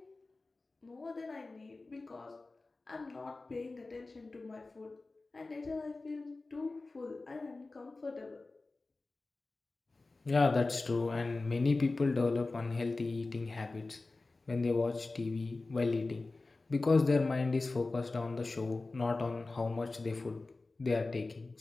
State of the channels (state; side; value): quieter; right; 3.4 dB